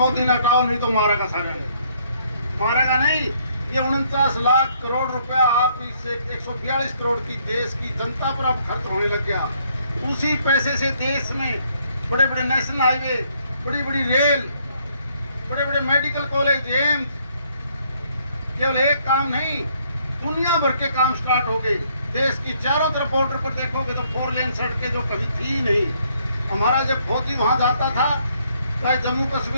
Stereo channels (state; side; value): inverted; both; correlation -0.68